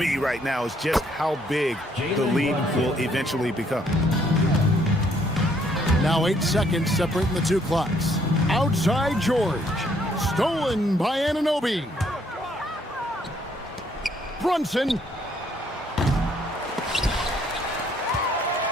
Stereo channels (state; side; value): normal; both; correlation 0.67